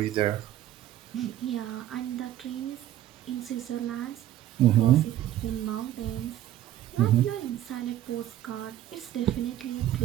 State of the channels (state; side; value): quieter; left; 12.8 dB